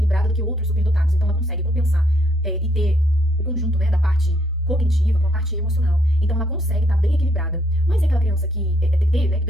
do que outros superdotados. Então ela consegue compensar e ter o conjunto, né, da parte cognitiva com a parte emocional. Então ela consegue estar bem equilibrada. Mas é aquela criança que né,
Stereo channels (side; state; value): both; normal; correlation 0.71